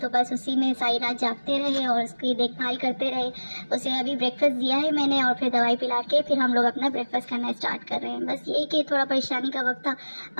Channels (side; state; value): both; inverted; correlation -1.00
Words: بس اسی میں ساری رات جاگتے رہے اور اس کی دیکھ بھال کرتے رہے. اسے ابھی بریک فاسٹ دیا ہے میں نے اور پھر دوائی پلا کے پھر ہم لوگ اپنا بریک فاسٹ کرنا اسٹارٹ کر رہے ہیں. بس یہی کہ تھوڑا پریشانی کا وقت تھا،